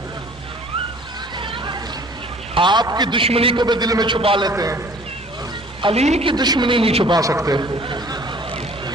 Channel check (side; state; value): both; normal; correlation 0.52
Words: آپ کی دشمنی کو بھی دل میں چھپا لیتے ہیں، علی کی دشمنی نہیں چھپا سکتے۔